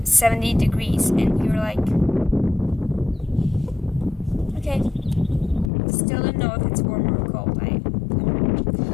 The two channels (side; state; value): right; drops out; at 5.7 s